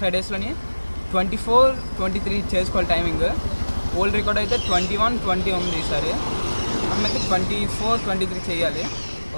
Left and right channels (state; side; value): inverted; both; correlation -1.00